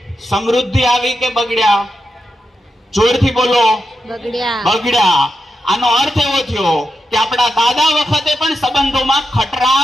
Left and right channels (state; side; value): normal; both; correlation 0.88